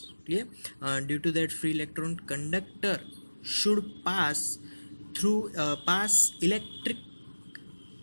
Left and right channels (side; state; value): both; inverted; correlation -1.00